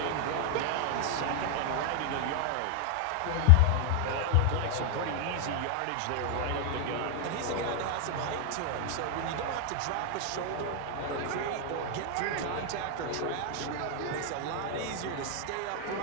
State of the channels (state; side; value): different; both; correlation 0.00